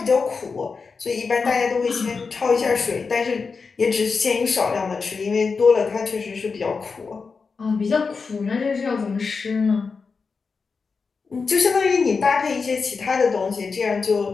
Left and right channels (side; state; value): right; quieter; 4.9 dB